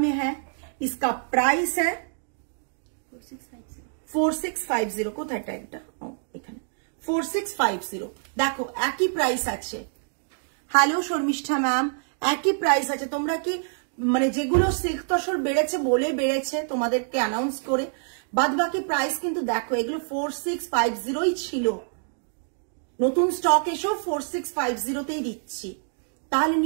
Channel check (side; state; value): left; silent; 61 dB below the other